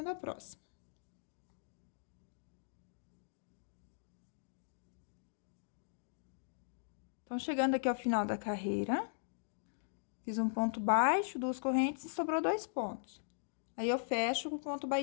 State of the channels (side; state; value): right; silent; digital silence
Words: a próxima. Então, chegando aqui ao final da carreira, fiz um ponto baixo, 2 correntes e sobrou 2 pontos. Aí, eu fecho com ponto